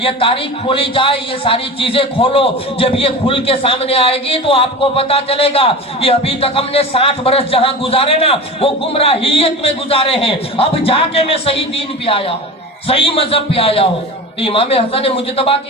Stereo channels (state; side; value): normal; both; correlation 0.31